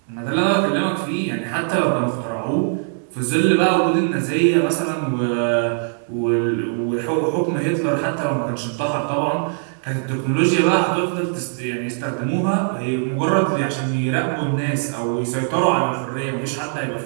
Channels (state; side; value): silent; left; 65 dB below the other